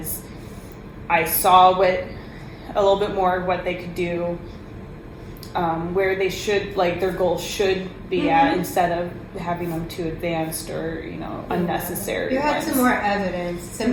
I saw a little bit more of what they could do, where they should, like, their goals should be at, instead of having them too advanced or, unnecessary. You had ones. some more evidence, some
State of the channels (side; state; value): both; identical; correlation 1.00